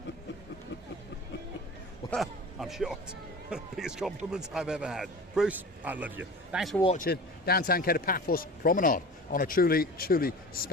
Well, I'm shocked. Biggest compliment I've ever had. Bruce, I love you. Thanks for watching Downtown Kato Paphos Promenade on a truly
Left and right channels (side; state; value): both; normal; correlation 0.36